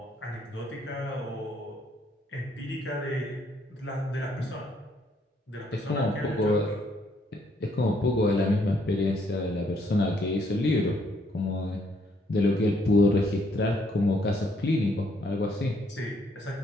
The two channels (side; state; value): both; normal; correlation 0.69